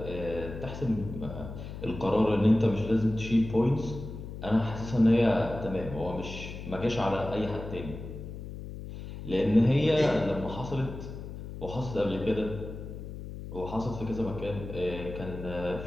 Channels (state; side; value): noise; left; hum, 10 dB below the sound